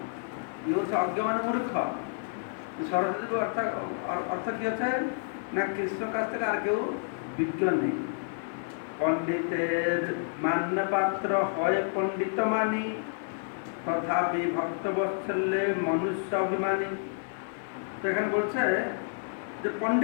কি হচ্ছে অজ্ঞ মানে মূর্খ। সরস্বতী অর্থ কি হচ্ছে না, কৃষ্ণের কাছ থেকে আর কেউ বিজ্ঞ নেই। পণ্ডিতের মান্য পাত্র হয় পণ্ডিত মানি, তথাপি ভক্ত বৎসল্যে মনুষ্য অভিমানী। তো এখানে বলছে যে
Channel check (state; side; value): silent; right; 58 dB below the other